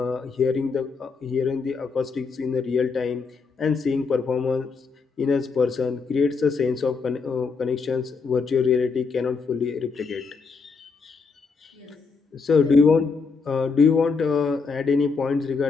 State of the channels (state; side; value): quieter; right; 4.8 dB